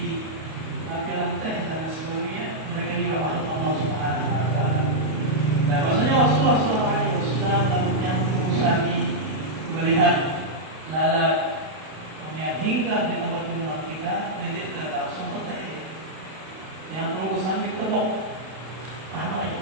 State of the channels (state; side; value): late; left; 32 ms